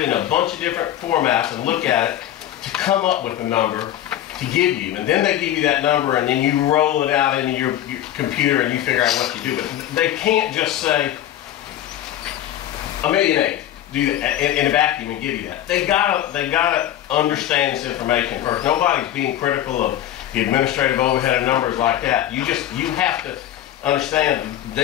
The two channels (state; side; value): quieter; right; 12.2 dB